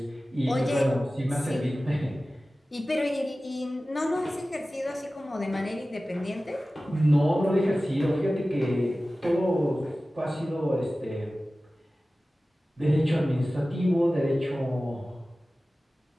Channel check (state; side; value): normal; both; correlation 0.96